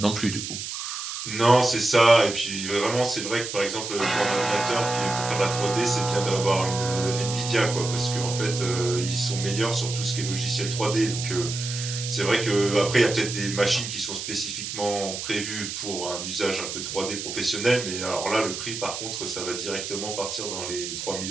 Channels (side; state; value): right; noise; hiss, 6 dB below the sound